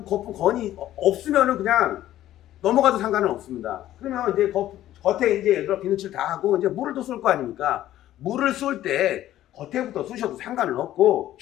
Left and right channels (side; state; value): right; quieter; 13.3 dB